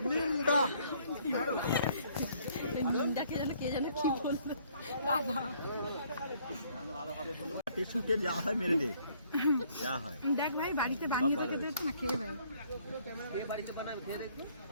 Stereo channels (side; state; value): both; inverted; correlation -0.63